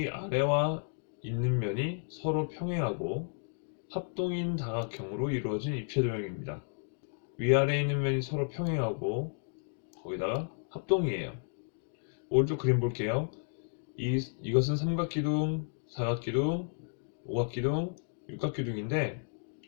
있는 면이 서로 평행하고 합동인 다각형으로 이루어진 입체도형입니다. 위아래에 있는 면이 서로 평행하고 거기다가 합동이에요. 오른쪽 그림 볼게요. 이것은 삼각기둥, 사각기둥, 오각기둥, 육각기둥인데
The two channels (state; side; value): silent; right; digital silence